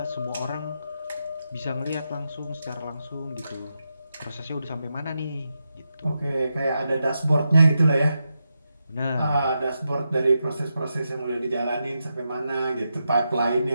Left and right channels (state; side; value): inverted; both; correlation -0.87